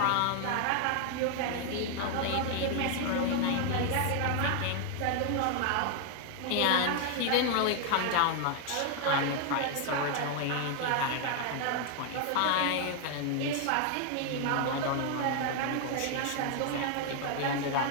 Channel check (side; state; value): both; different; correlation 0.00